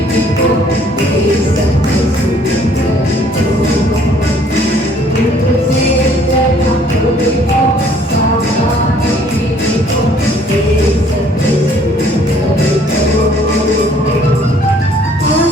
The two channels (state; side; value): normal; both; correlation 0.59